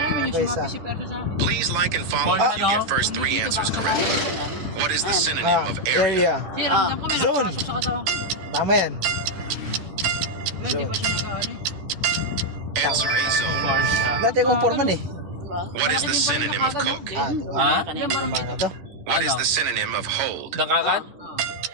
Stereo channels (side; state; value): left; late; 11 ms